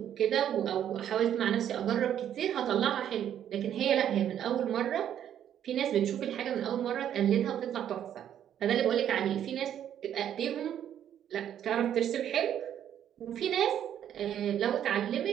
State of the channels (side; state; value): left; quieter; 10.1 dB